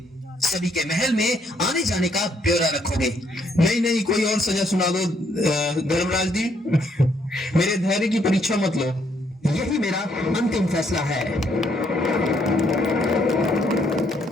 सभी के महल में आने जाने का ब्यौरा रखोगे। नहीं नहीं, कोई और सजा सुना दो धर्मराज जी, मेरे धैर्य की परीक्षा मत लो। यही मेरा अंतिम फैसला है।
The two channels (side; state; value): both; normal; correlation 0.71